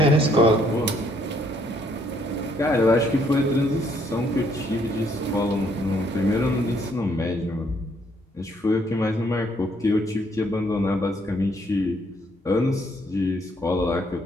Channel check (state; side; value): normal; both; correlation 0.68